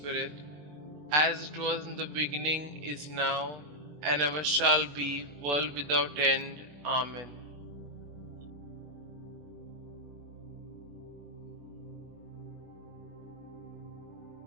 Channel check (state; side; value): late; left; 20 ms